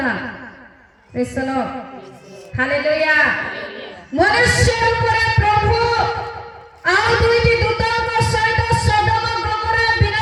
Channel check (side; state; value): both; identical; correlation 1.00